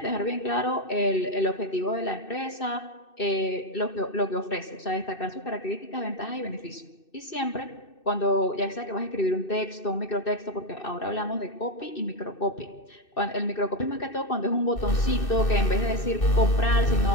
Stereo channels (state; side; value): late; right; 2.6 ms